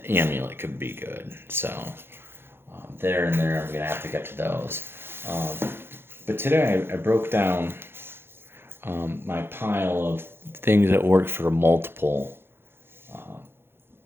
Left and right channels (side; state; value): left; late; 0.11 ms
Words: amulet could be good. So there and there, I'm going to have to get to those. But today I broke down my pile of things that work for multiple